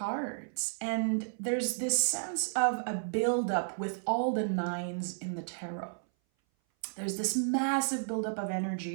And there's this sense of a buildup with all the nines in the tarot. There's this massive buildup of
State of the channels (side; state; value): left; silent; 56 dB below the other